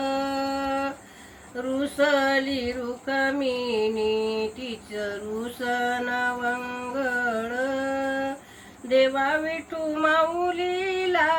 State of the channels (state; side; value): identical; both; correlation 1.00